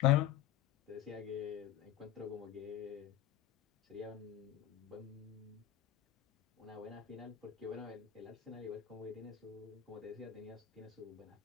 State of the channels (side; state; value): right; quieter; 11.8 dB